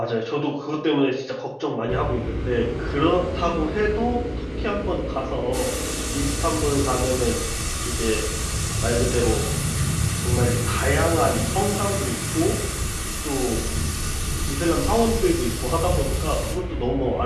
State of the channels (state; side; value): identical; both; correlation 1.00